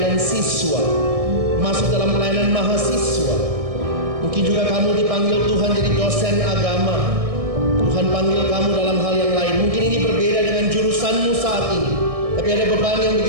siswa, masuk dalam pelayanan mahasiswa. Mungkin juga kamu dipanggil Tuhan jadi dosen agama. Tuhan panggil kamu dalam hal yang lain. Mungkin ini berbeda dengan jurusanmu saat ini, tapi ada beban yang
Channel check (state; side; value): late; left; 1.6 ms